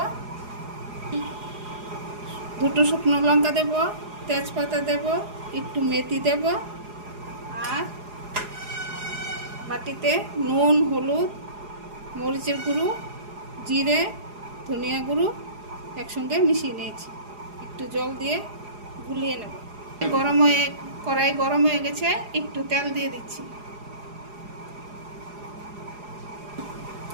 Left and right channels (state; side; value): late; left; 4.8 ms